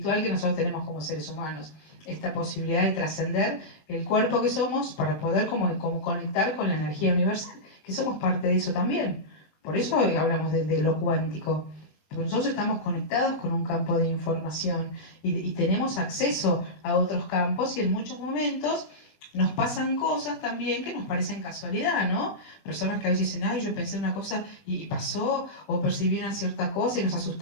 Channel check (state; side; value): late; right; 20 ms